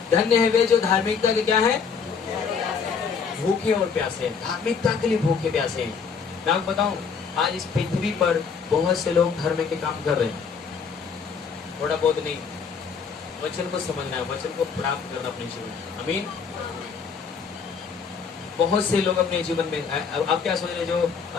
धन्य है वे जो धार्मिकता के क्या है, भूखे और प्यासे। धार्मिकता के लिए भूखे प्यासे। मैं आपको बताऊं, आज इस पृथ्वी पर बहुत से लोग धर्म के काम कर रहे हैं, थोड़ा बहुत नहीं। वचन को समझना है, वचन को प्राप्त करना अपने जीवन में। आमीन। बहुत से लोग अपने जीवन में, आप क्या सोच रहे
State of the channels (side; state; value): right; quieter; 6.0 dB